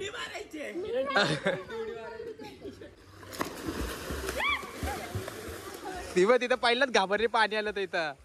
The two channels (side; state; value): both; identical; correlation 1.00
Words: ती तिथं पहिलाच घाबरली पाणी आलं तर इथं.